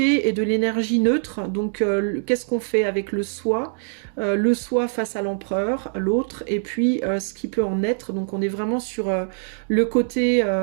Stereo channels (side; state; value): left; silent; digital silence